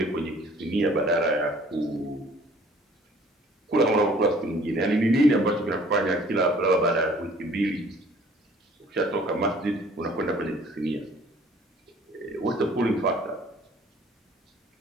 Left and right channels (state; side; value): normal; both; correlation 0.54